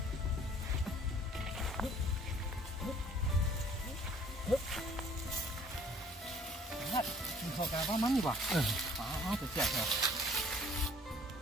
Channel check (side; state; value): both; normal; correlation 0.55